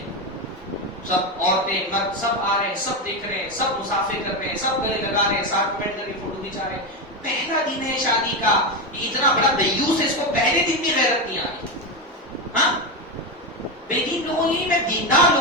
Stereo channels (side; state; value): both; normal; correlation 0.13